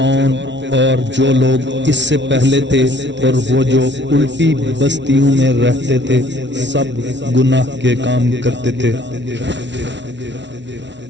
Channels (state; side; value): late; left; 0.52 ms